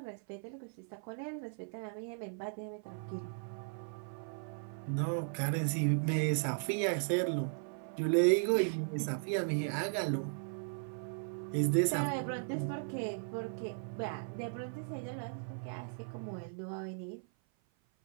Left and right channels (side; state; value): left; silent; 53 dB below the other